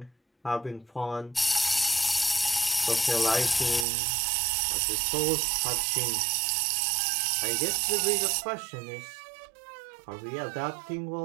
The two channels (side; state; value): left; drops out; at 3.9 s